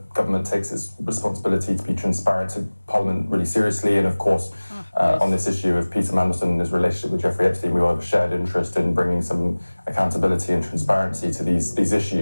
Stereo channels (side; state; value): both; inverted; correlation -1.00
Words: takes its responsibility to be transparent to Parliament really seriously, and of course, on this issue of Peter Mandelson and his relationship with Jeffrey Epstein, we all have a shared interest in bringing some accountability and transparency to these